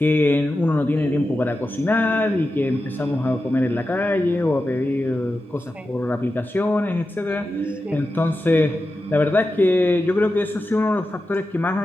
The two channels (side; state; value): both; normal; correlation 0.91